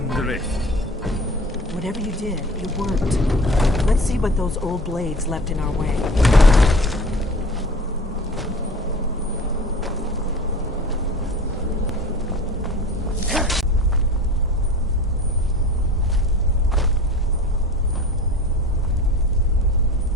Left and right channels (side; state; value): both; normal; correlation 0.40